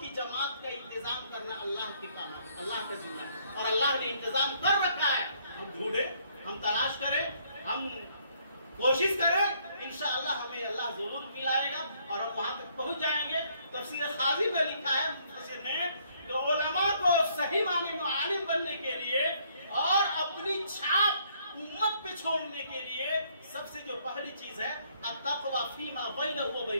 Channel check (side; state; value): both; inverted; correlation -0.66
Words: کی جماعت کا انتظام کرنا اللہ کے کام ہے، اللہ کا ذمہ ہے، اور اللہ نے انتظام کر رکھا ہے۔ ہم ڈھونڈے، ہم تلاش کریں، ہم کوشش کریں، انشاءاللہ ہمیں اللہ ضرور ملائے گا اور ہم وہاں تک پہنچ جائیں گے۔ تفسیر خازی میں لکھا ہے مفسر نے کہ علماء کو صحیح معنی میں عالم بننے کے لیے اور اپنی چھاپ امت پہ چھوڑنے کے لیے سب سے جو پہلی چیز ہے التقوی فیما بینہ و